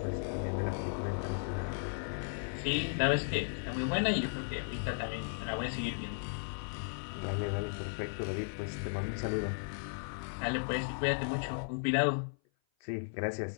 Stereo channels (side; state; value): right; silent; 54 dB below the other